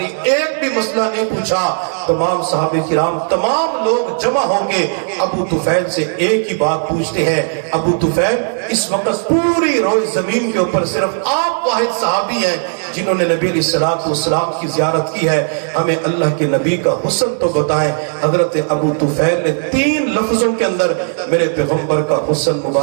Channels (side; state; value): left; silent; digital silence